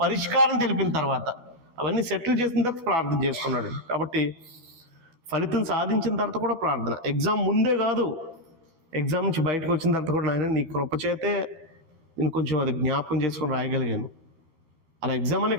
పరిష్కారం తెలిపిన తర్వాత, అవన్నీ సెటిల్ చేసిన తర్వాత ప్రార్థన చేసుకున్నాడు. కాబట్టి ఫలితం సాధించిన తర్వాత కూడా ప్రార్థన. ఎగ్జామ్ ముందే కాదు, ఎగ్జామ్ నుంచి బయటకు వచ్చిన తర్వాత కూడా నాయన నీ కృప చేతే నేను కొంచెం అది జ్ఞాపకం చేసుకొని రాయగలిగాను. అలా ఎగ్జామ్ అనే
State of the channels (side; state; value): left; late; 12 ms